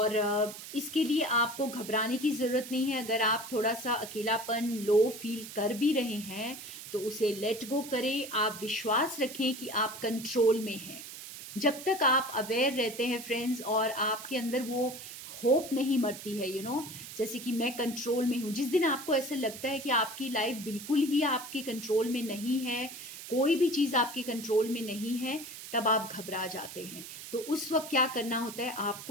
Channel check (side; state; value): right; noise; hiss, 12 dB below the sound